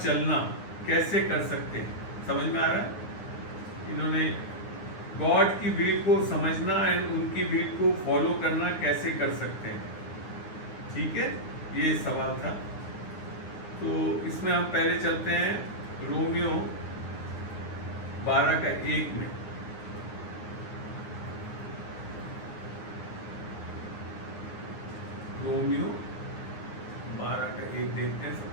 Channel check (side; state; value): right; late; 9.6 ms